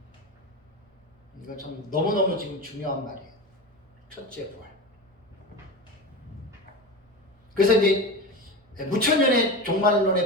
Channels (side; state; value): both; normal; correlation 0.25